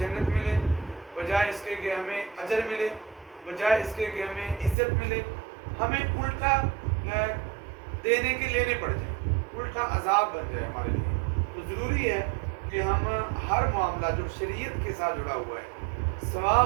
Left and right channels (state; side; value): drops out; left; at 4.8 s